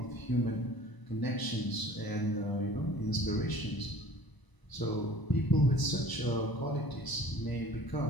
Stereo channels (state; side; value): late; right; 1.0 ms